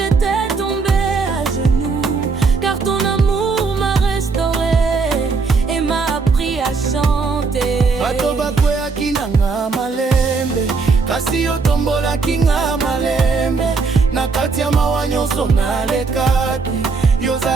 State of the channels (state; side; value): quieter; left; 4.5 dB